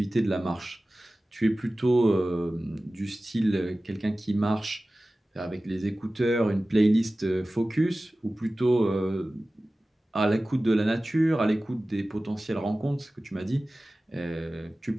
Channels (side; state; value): both; normal; correlation 0.96